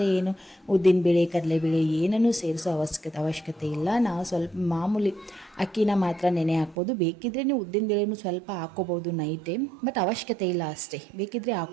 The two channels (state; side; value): drops out; left; at 6.8 s